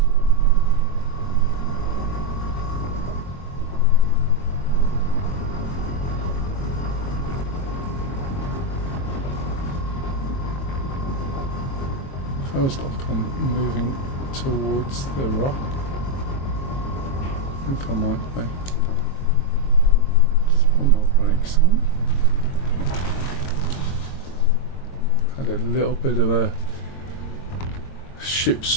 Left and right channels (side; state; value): right; late; 22 ms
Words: Feels like I'm moving towards the rock. I think I might be. Just put my brakes on. Had a little bit of a ship